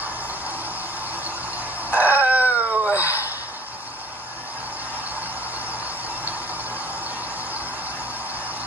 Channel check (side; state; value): both; normal; correlation 0.51